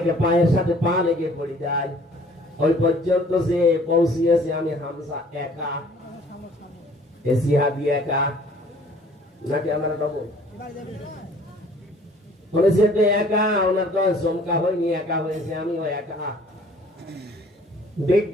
পায়ের সাথে পা লেগে পড়ে যায়। ওই পর্যন্ত যে পৌঁছিয়েছে আমি হামসা একা, এসিহাদি একা, নাকি আমরা ডবল বলেছে তো একা, ওনার তো চমকা হয়নি, একা হয়েছে, আমিও একা।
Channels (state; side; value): normal; both; correlation 0.55